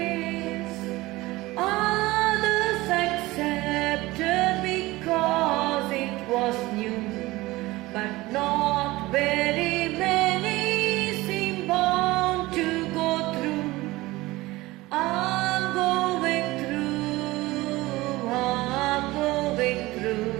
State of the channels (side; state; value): left; quieter; 19.6 dB